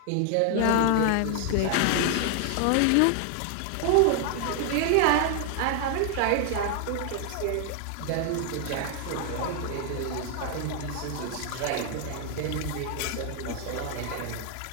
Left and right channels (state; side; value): different; both; correlation 0.00